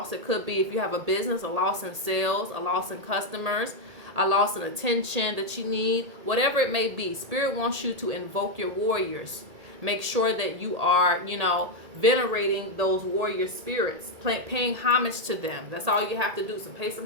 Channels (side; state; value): left; late; 1.8 ms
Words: It could be if you have a business, a loss in sales, a loss in customers, a loss in attention that you need, whatever it may be. Spirit wants you to invoke your warriors. Make sure that you are, you know, venerating those warrior spirits, paying homage to them. That's all you have to do. So pay